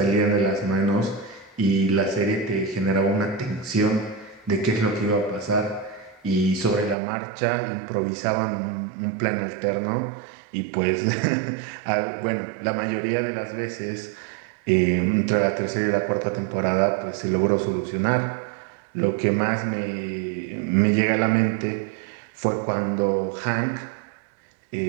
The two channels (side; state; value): left; drops out; at 7.0 s